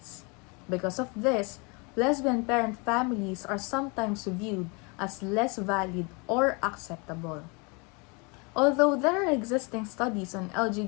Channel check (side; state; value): right; quieter; 30.9 dB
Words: Because of this, lesbian parent families are sometimes viewed as less valid or acceptable. Although there are existing studies on